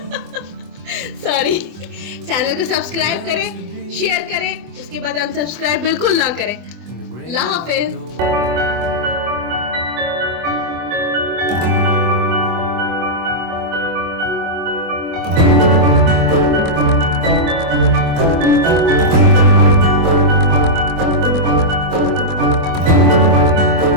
सॉरी चैनल को सब्सक्राइब करें, शेयर करें, उसके बाद अनसब्सक्राइब बिल्कुल ना करें। अल्लाह हाफिज।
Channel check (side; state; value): left; late; 24 ms